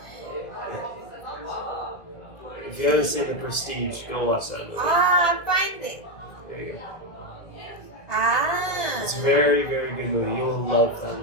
If you haven't seen The Prestige, go watch that movie. Ah, find it. There you go. Ah. It's a very, very good movie. You will love that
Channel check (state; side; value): late; right; 2.1 ms